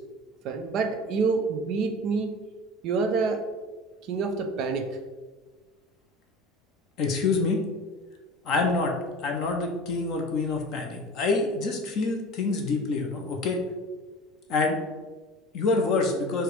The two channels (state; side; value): normal; both; correlation 0.37